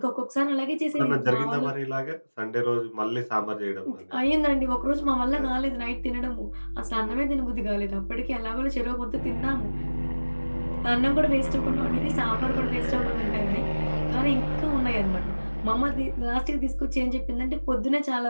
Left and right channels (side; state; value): both; inverted; correlation -1.00